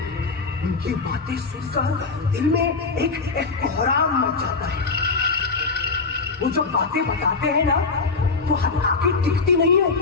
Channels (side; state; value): right; quieter; 4.3 dB